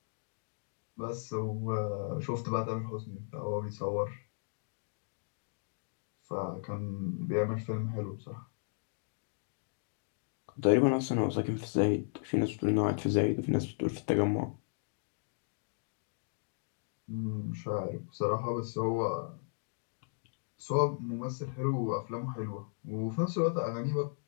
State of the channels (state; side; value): silent; right; digital silence